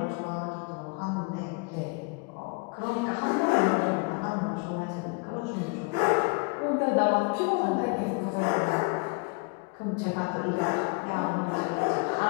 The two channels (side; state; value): right; quieter; 30.9 dB